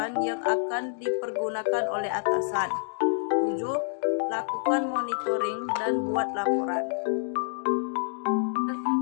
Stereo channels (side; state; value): right; silent; digital silence